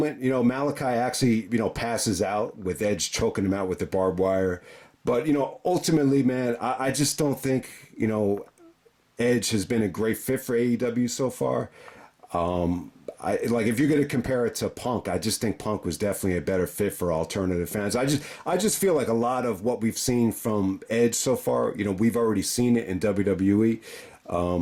Malakai actually, passes out with Edge choking him out with the barbed wire. But, ultimately, man, I just don't think, Edge has been a great fit for AEW so far. If you're going to compare it to Punk, I just think Punk was definitely a better fit for alternative fans. I just feel like a lot of what we've seen from Edge so far, we've already seen it in WWE.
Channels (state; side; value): identical; both; correlation 1.00